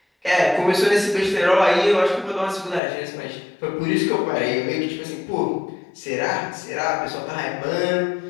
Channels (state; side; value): drops out; right; at 2.8 s